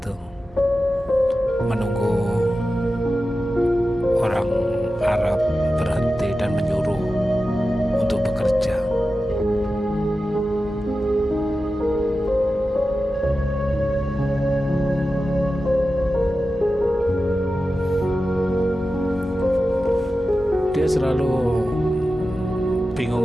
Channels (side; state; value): both; normal; correlation 0.93